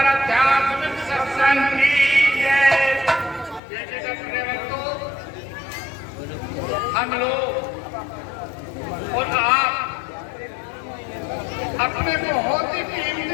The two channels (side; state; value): right; drops out; at 3.6 s